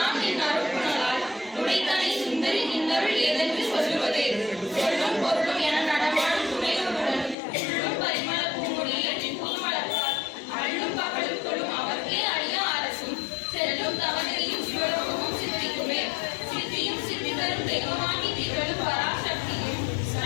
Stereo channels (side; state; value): right; drops out; at 7.4 s